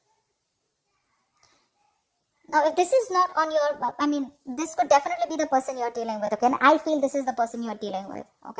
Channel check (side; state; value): both; identical; correlation 1.00